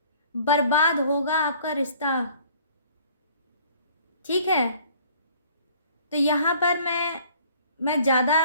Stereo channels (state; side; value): inverted; both; correlation -0.54